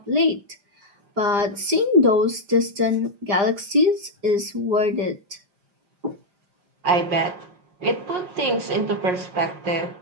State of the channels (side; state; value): left; late; 5.0 ms